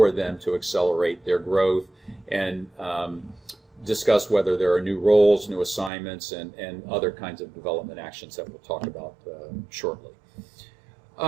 them to accelerate their growth, and discuss whether there are new roles, new assignments, and other kinds of development actions that we'll talk about shortly.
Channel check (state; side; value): drops out; left; at 5.9 s